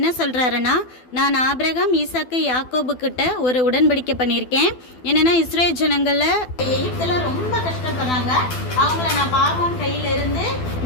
சொல்கிறாருன்னா, நான் ஆபிரகாம், ஈசாக்கு, யாக்கோபு கிட்ட ஒரு உடன்படிக்கை பண்ணியிருக்கேன். என்னென்னா, இஸ்ரேல் ஜனங்களில் எகிப்தில் ரொம்ப கஷ்டப்படுறாங்க, அவங்கள நான் பார்வோன் கையில இருந்து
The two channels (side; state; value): right; late; 12 ms